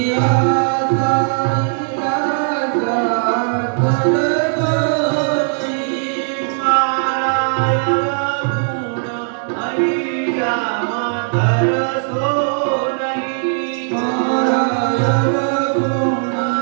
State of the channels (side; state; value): left; silent; 67 dB below the other